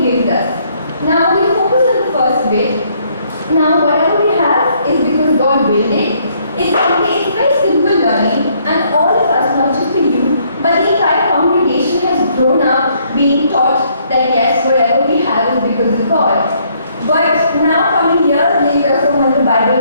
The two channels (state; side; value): inverted; both; correlation -0.68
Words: us. Now we focus on the first bit. Now whatever we have is because God willed it. It's very simple learning, and all of us, not just you, but the entire congregation has grown up being taught that yes, whatever we have is because of God. But now coming years later from when the